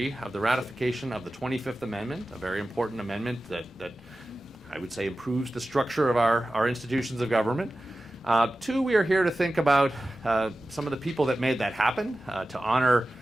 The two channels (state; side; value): normal; both; correlation 0.95